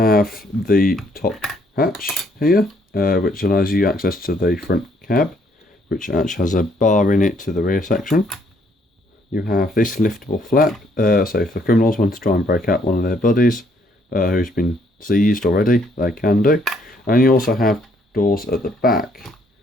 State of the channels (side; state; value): both; normal; correlation 0.68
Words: the top hatch here, which allows you access to the front cab, which actually has a bar in it to the rear section. You have this liftable flap, so if the criminals want to try and break out one of their buddies who's been seized already, they can do. And you also have doors at the back.